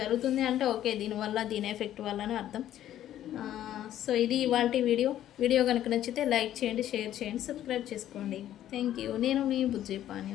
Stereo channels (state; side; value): quieter; right; 12.0 dB